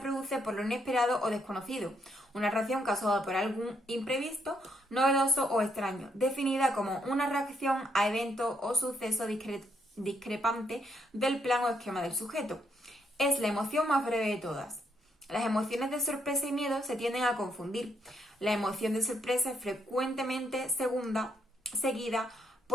por lo inesperado o desconocido, una reacción causada por algún imprevisto, novedoso o extraño, definida como una reacción a evento o suceso discrepante del plan o esquema del sujeto. Es la emoción más breve de todas. Las emociones de sorpresa y miedo se tienden a confundir. La emoción de sorpresa es frecuentemente seguida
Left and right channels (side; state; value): both; normal; correlation 0.75